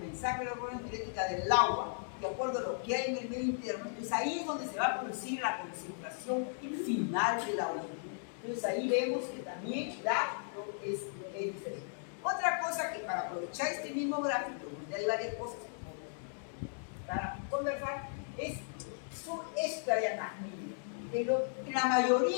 de la hormona antidiurética del agua, de acuerdo a lo que hay en el medio interno. Entonces ahí es donde se va a producir la concentración final de la orina. Entonces ahí vemos que también es diferente. Otra cosa que para aprovechar este mismo gráfico, donde hay varias cosas para conversar, son esta dianámica. En la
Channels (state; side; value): silent; right; digital silence